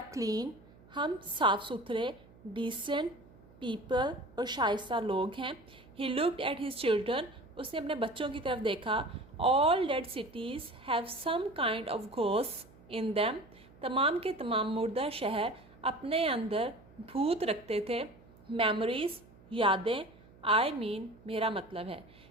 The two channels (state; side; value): noise; right; hum, 24 dB below the sound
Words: क्लीन, हम साफ़ सुथरे, डिसेंट पीपल और शाइस्ता लोग हैं। He looked at his children, उसने अपने बच्चों की तरफ देखा। All dead cities have some kind of ghost in them, तमाम के तमाम मुर्दा शहर अपने अंदर भूत रखते थे। मेमोरीज, यादें, आई मीन मेरा मतलब है।